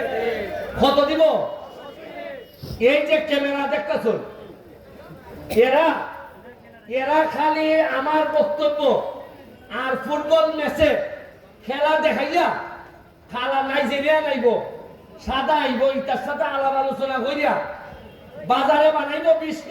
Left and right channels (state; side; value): identical; both; correlation 1.00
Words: কত দিব এই যে ক্যামেরা দেখতেছ এরা খালি আমার বক্তব্য আর ফুটবল ম্যাচে খেলা দেখাইয়া খালা নাইজেরিয়া নাইব সাদা আইব ইটার সাথে আলাপ আলোচনা করিয়া বাজারে বানাইব 20